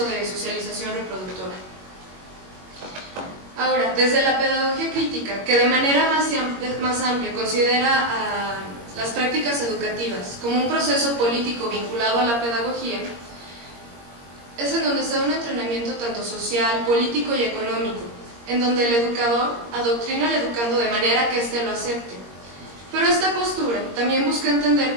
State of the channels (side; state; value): left; late; 21 ms